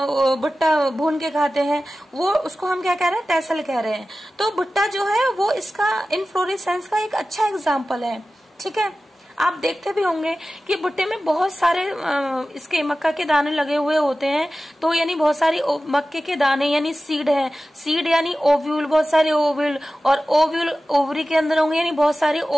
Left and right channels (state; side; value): normal; both; correlation 0.95